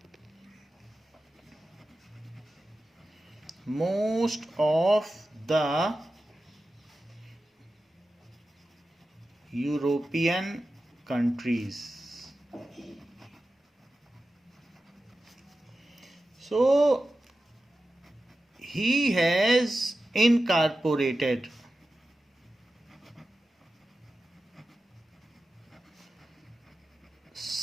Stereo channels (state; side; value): normal; both; correlation 0.93